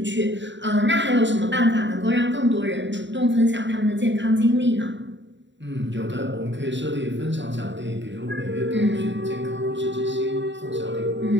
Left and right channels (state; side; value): late; left; 0.53 ms